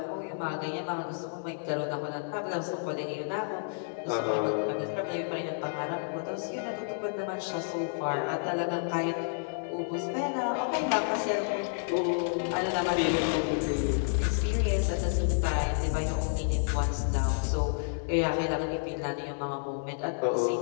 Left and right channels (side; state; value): right; silent; digital silence